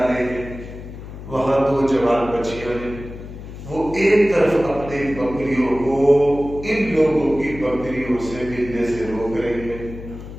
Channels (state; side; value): noise; left; hum, 12 dB below the sound